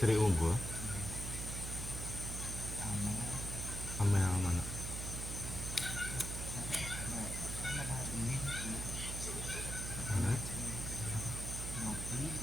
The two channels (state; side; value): noise; right; hum, 5 dB below the sound